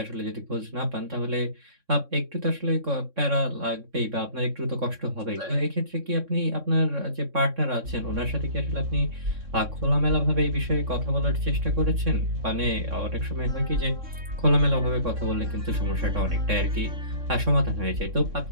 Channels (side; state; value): left; late; 3.6 ms